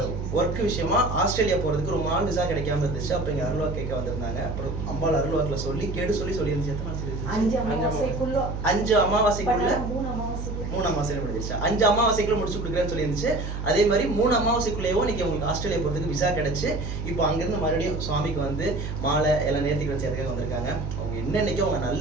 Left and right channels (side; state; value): right; noise; hum, 5 dB below the sound